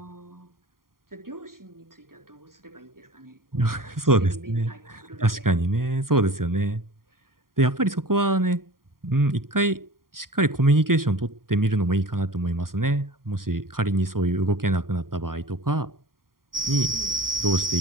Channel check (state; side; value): late; left; 0.91 ms